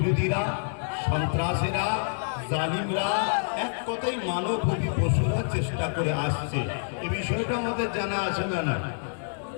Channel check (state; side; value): silent; right; 60 dB below the other